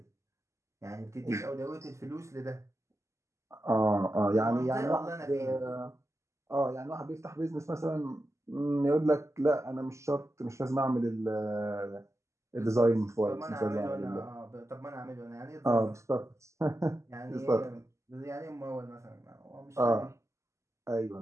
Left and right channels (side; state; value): left; late; 0.14 ms